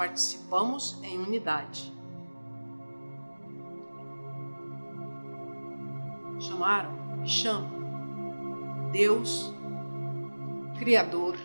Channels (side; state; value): both; inverted; correlation -1.00